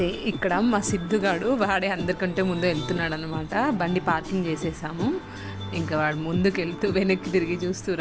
ఇక్కడ మా సిద్ధుగాడు వాడే అందరికంటే ముందు వెళ్తున్నాడు అనమాట. బండి పార్కింగ్ చేసేసాము, ఇంకా వాడు ముందుకు వెళ్తూ వెనక్కి తిరిగి చూస్తూ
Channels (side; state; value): both; identical; correlation 1.00